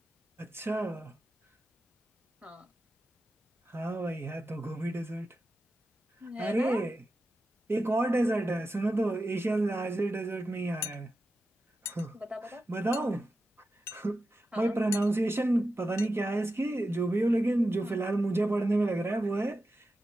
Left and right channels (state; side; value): normal; both; correlation 0.91